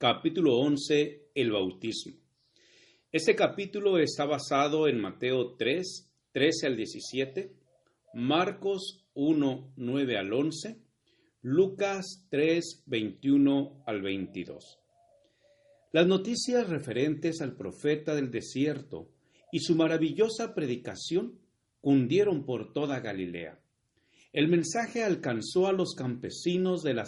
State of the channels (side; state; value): both; identical; correlation 1.00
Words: 11, el bautismo. Este capítulo está basado en Mateo 3, 13 al 17, Marcos 1, 9 al 11, Lucas 3, 21 al 22. Las noticias referentes al profeta del desierto y su maravillosa predicación cundieron por toda Galilea. El mensaje alcanzó a los campesinos de